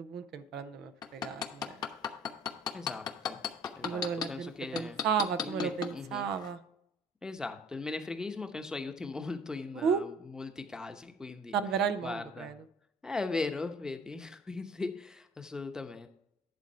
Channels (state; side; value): normal; both; correlation 0.52